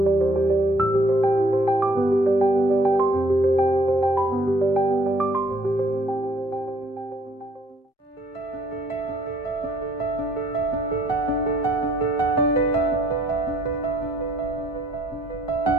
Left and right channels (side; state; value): both; normal; correlation 0.63